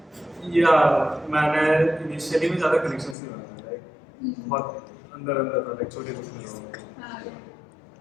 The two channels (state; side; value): drops out; right; at 3.2 s